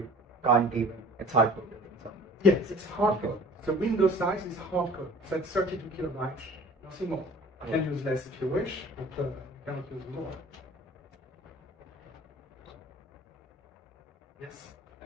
can't even. It's hard coded in some way. Yes, it's hard code. So window size is hard code. So it's 32 kilobytes, nothing more. You can use less if you wish, but you cannot use more. Yes.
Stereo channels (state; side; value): normal; both; correlation 0.47